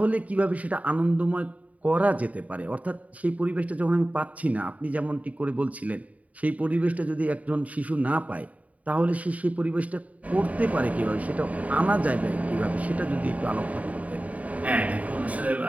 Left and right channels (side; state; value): left; late; 0.070 ms